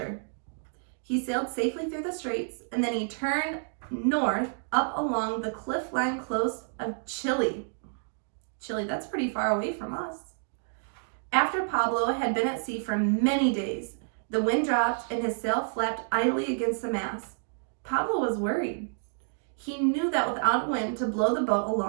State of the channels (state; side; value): silent; left; digital silence